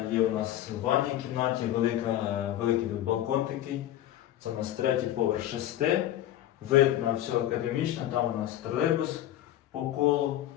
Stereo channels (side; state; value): right; quieter; 12.8 dB